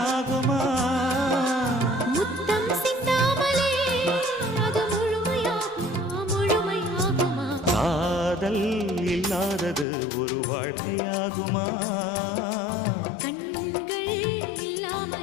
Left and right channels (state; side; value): drops out; right; at 9.9 s